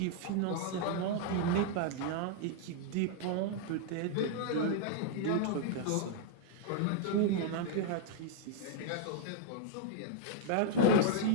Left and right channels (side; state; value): both; different; correlation -0.01